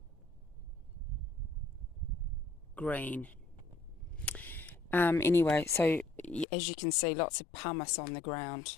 Green. Anyway, so as you can see, lots of pumice on the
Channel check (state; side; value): drops out; right; at 6.5 s